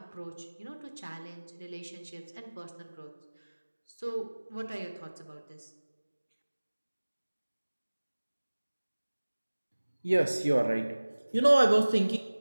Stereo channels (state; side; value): inverted; both; correlation -1.00